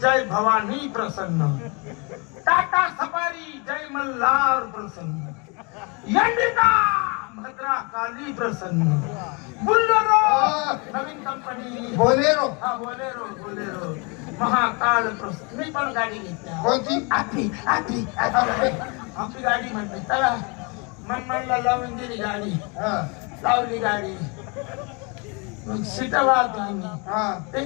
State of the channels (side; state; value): right; quieter; 31.4 dB